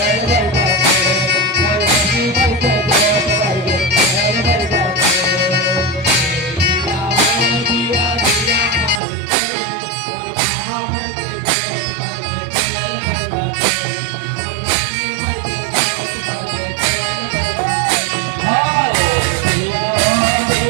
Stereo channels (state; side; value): drops out; left; at 9.0 s